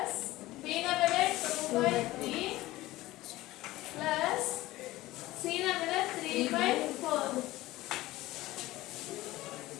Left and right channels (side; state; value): right; quieter; 17.6 dB